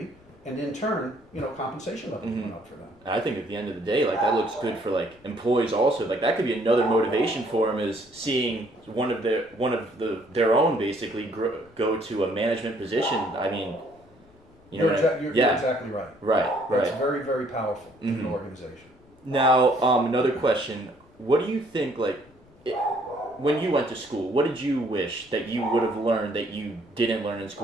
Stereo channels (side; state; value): left; noise; rumble, 28 dB below the sound